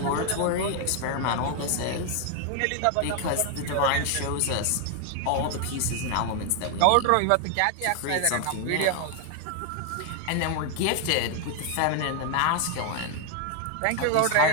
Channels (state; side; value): different; both; correlation 0.01